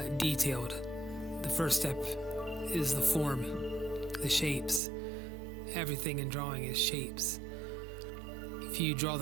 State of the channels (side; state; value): left; drops out; at 4.8 s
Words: detailed. The first step is the form, the shapes. Everything in drawing is shapes. If you draw